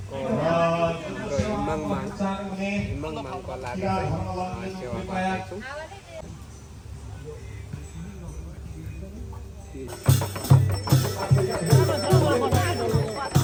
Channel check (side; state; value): both; identical; correlation 1.00